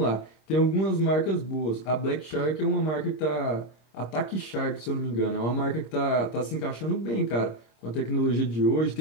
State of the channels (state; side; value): late; right; 26 ms